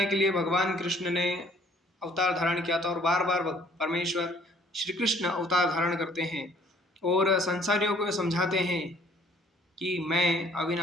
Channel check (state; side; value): normal; both; correlation 0.59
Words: के लिए भगवान कृष्ण ने अवतार धारण किया था और बार बार परमेश्वर श्री कृष्ण अवतार धारण करते हैं और संसारियों को समझाते हैं कि मैं